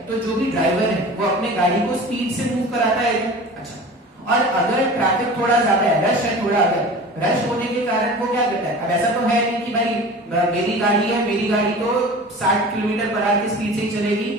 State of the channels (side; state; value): both; normal; correlation 0.37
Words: तो जो भी ड्राइवर है वो अपने गाड़ी को स्पीड से मूव कराता है। अच्छा, और अगर ट्रैफिक थोड़ा ज्यादा है, रश है थोड़ा, अगर रश होने के कारण वो क्या करता है, अब ऐसा तो है नहीं कि भाई मेरी गाड़ी है, मेरी गाड़ी तो 60 किलोमीटर पर आवर की स्पीड से ही चलेगी,